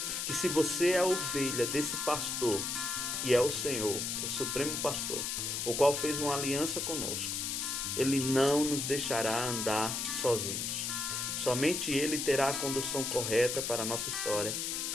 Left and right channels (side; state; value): left; noise; hiss, 2 dB below the sound